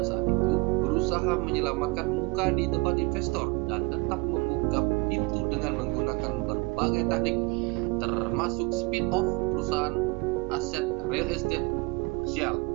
saat itu berusaha menyelamatkan muka di depan investor dan tetap membuka pintu dengan menggunakan berbagai taktik, termasuk spin-off perusahaan aset real estate komersial.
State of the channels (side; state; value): left; quieter; 27.1 dB